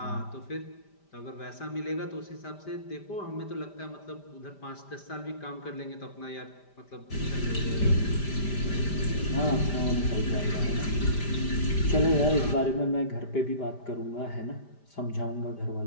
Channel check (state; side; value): late; right; 5.0 ms